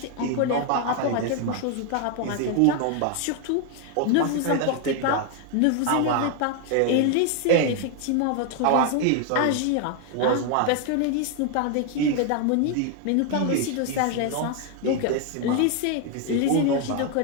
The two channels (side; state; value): both; different; correlation 0.01